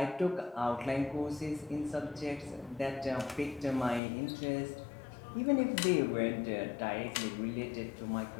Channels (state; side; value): drops out; right; at 4.0 s